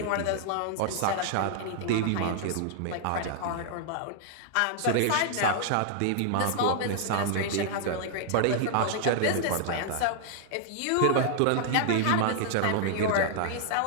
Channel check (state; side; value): different; both; correlation -0.01